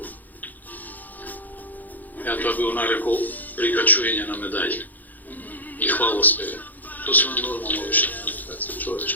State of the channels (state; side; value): late; right; 0.083 ms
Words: Ја тоа би го нарекол прикачување на медаљи и хвалоспеви. Тоа се нормално вишто комуникација